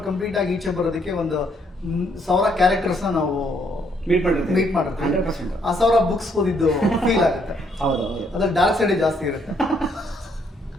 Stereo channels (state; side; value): normal; both; correlation 0.70